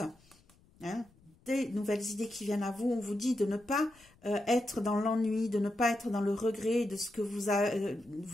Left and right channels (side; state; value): left; noise; rumble, 30 dB below the sound